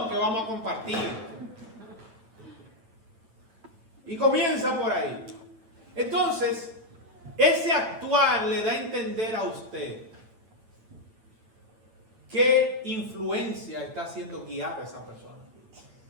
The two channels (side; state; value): left; late; 9.2 ms